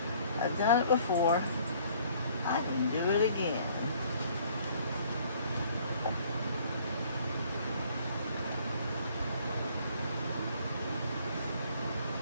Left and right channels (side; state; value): both; inverted; correlation -0.59